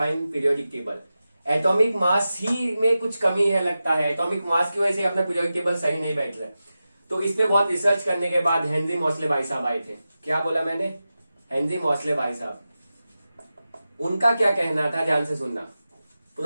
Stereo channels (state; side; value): inverted; both; correlation -0.93